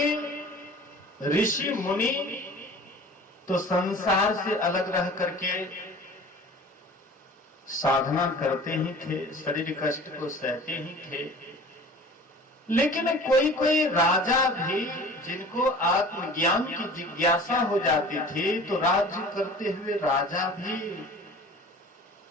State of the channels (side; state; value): both; normal; correlation 0.43